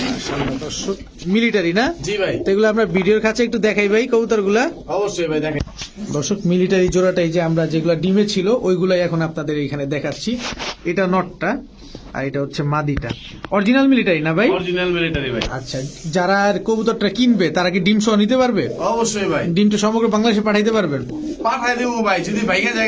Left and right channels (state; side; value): identical; both; correlation 1.00